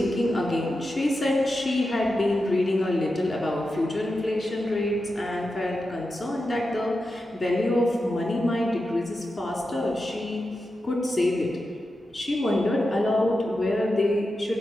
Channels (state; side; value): normal; both; correlation 0.90